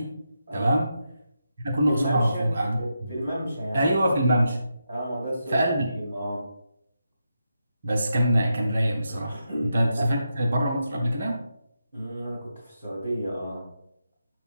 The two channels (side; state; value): both; inverted; correlation -0.85